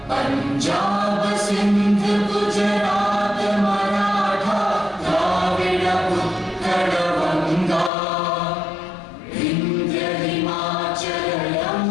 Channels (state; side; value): drops out; right; at 7.9 s